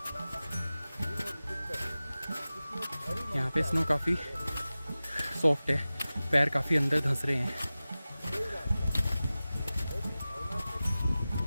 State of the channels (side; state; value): both; inverted; correlation -0.96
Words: यहाँ पे स्नो काफ़ी सॉफ्ट है, पैर काफ़ी अंदर धंस रहे हैं।